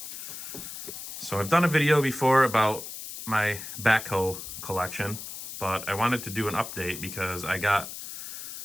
So I've done a video before about my backhoe collection, but I wanted to do an update because I got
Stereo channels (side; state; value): left; noise; hiss, 9 dB below the sound